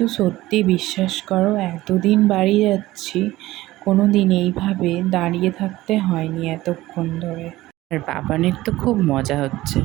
সত্যি বিশ্বাস করো, এতদিন বাড়ি যাচ্ছি, কোনো দিন এইভাবে দাঁড়িয়ে থাকতে হয়নি এতক্ষণ ধরে। আর বাবানের তো খুব মজা হচ্ছে।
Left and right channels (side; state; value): left; quieter; 17.0 dB